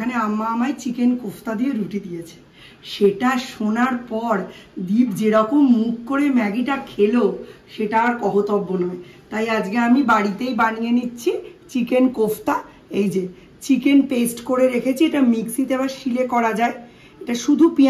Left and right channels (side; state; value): both; identical; correlation 1.00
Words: আম্মা আমায় চিকেন কোফতা দিয়ে রুটি দিয়েছে। সেটা শোনার পর দীপ যেরকম মুখ করে ম্যাগিটা খেলো সেটা আর কহতব্য নয়। তাই আজকে আমি বাড়িতেই বানিয়ে নিচ্ছি চিকেন কোফতা। এই যে চিকেন পেস্ট করে রেখেছি, এটা মিক্সিতে আবার শিলে করা যায়। এটা শুধু